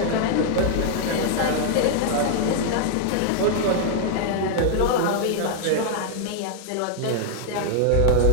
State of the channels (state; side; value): different; both; correlation -0.01